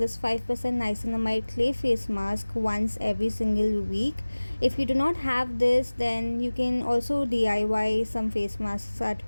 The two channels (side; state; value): both; inverted; correlation -1.00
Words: 5% niacinamide clay face mask once every single week. If you do not have this, then you can also DIY some face masks at